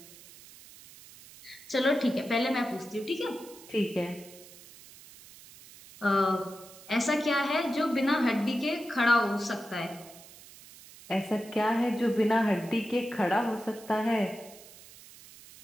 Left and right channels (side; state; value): right; noise; hiss, 20 dB below the sound